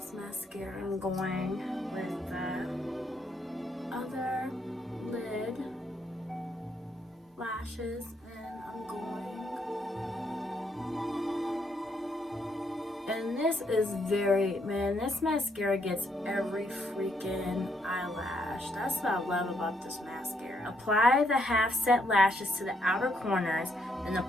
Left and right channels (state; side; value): normal; both; correlation 0.74